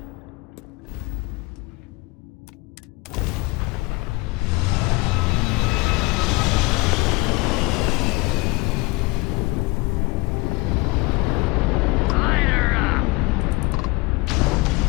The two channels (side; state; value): right; quieter; 24.2 dB